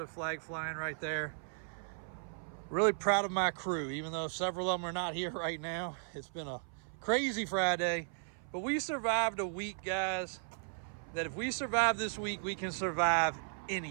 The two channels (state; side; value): silent; left; 54 dB below the other